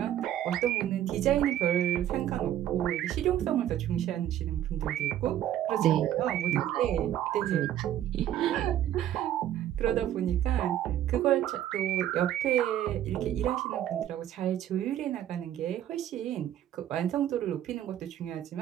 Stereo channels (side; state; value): left; quieter; 11.6 dB